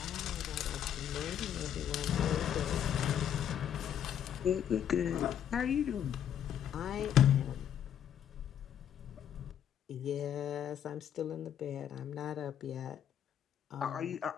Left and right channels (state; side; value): quieter; right; 9.5 dB